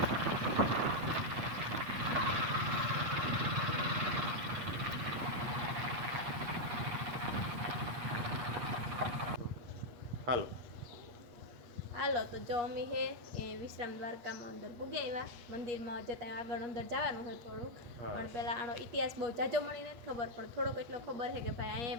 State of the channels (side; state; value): left; late; 8.4 ms